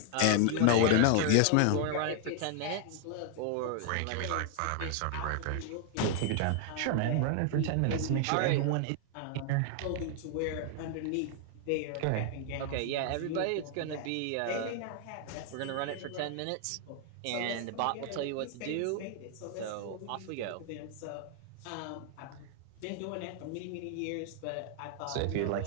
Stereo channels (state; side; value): different; both; correlation 0.00